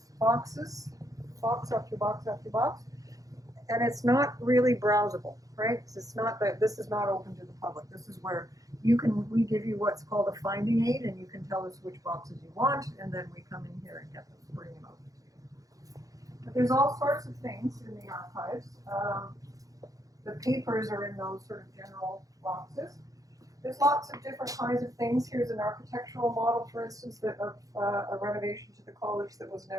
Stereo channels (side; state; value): left; late; 0.17 ms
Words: boxes, box after box after box. And it's not really browsable, right? It's not that this is not open to the public. This is where we give you what's called a finding aid, and you can tell us which boxes you want, and then we come in here and get them, bring them out. But there's all sorts of things in the archives. The papers are in those sort of general boxes. There's lots of different kinds of things. Here's an architectural model, for instance, of a renovation to the college that was